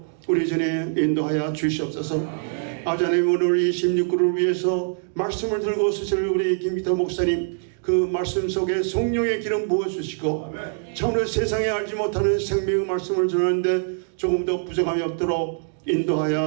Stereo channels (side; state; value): left; silent; digital silence